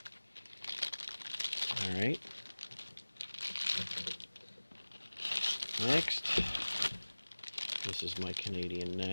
Alright. Next, this is my Canadian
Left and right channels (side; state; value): both; inverted; correlation -1.00